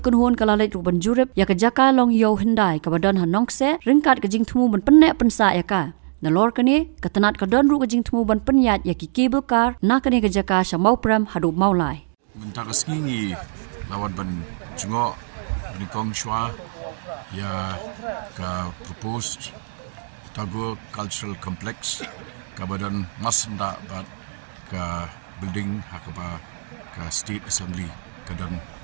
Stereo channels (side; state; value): left; silent; digital silence